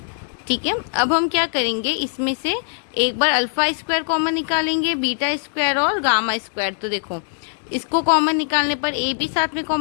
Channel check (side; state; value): right; silent; digital silence